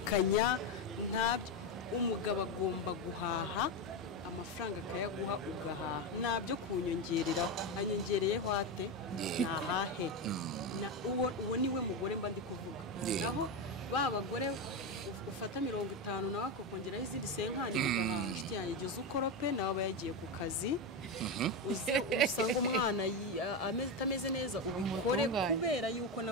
umugabo agomba guhaha, amafaranga akayaguha ugahaha, nta byo kunyongereraho. Anyongereyeho ate nahahe? Uwo niwe mugore mba ndi kuvuga. Naho ba bagore ufata 50 nawe akakongeraho izindi 50 ugahaha, inshuti yanjye igihe ukorope nawe aba yagiye ku kazi, usanga umwana atameze neza ubikore kubera yuko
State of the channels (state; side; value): normal; both; correlation 0.13